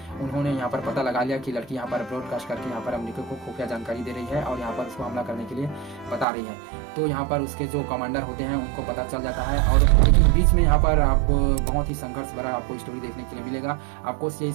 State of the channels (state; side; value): drops out; left; at 6.2 s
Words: उन्होंने यहाँ पर पता लगा लिया कि लड़की यहाँ पर ब्रॉडकास्ट करके यहाँ पर अमेरिका को खुफिया जानकारी दे रही है और यहाँ पर उसको हमला करने के लिए बता रही है। तो यहाँ पर उसके जो कमांडर होते हैं उनको पता चल जाता है। और लेकिन बीच में यहाँ पर आपको बहुत ही संघर्ष भरा आपको स्टोरी देखने के लिए मिलेगा। आपको ये